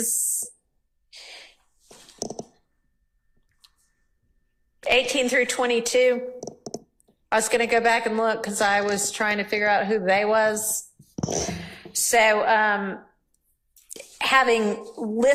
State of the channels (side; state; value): both; identical; correlation 1.00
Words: 18 through 22. I was gonna go back and look because I was trying to figure out who they was. So, having